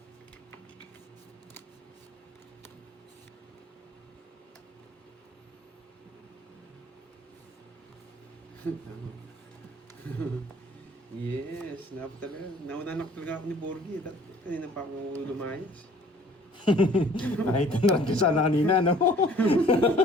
Yes, nauna na talaga ako ni Borgie. Kanina pa ako lumayas. Nakita na rin sana kanina, no?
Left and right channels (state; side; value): normal; both; correlation 0.54